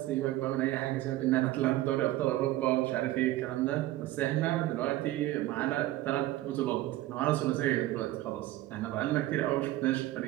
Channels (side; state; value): left; quieter; 16.0 dB